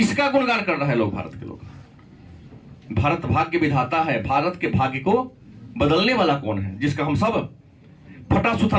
गुणगान कर रहे हैं लोग? भारत के लोग। भारत भाग्य विधाता है, भारत के भाग्य को बदलने वाला कौन है जिसका हम सब फटा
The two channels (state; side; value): identical; both; correlation 1.00